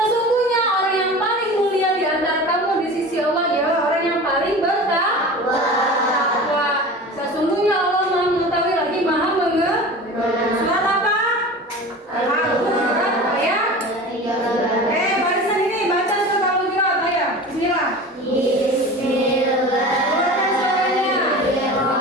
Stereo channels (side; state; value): both; normal; correlation 0.35